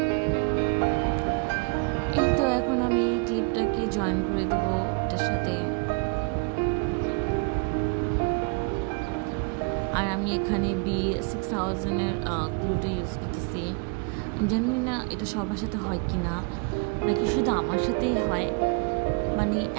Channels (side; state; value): left; quieter; 35.3 dB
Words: এই তো এখন আমি ক্লিপটাকে জয়েন করে দিব এটার সাথে। আর আমি এখানে B6000-এর গ্লুটা ইউজ করতেছি। জানি না এটা সবার সাথে হয় কি না, নাকি শুধু আমার সাথেই হয়। মানে